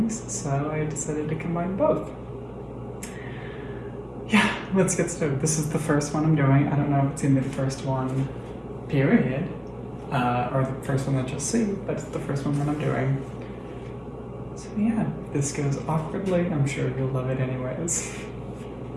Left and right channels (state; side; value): identical; both; correlation 1.00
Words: so I decided to combine both. Yeah, let's get started. This is the first one I'm doing. I don't know if it's gonna be the first one, period, or the first one that you'll see, but it's the first one that I'm doing. So yeah, if this goes awkwardly, I'm sure you'll love it anyways.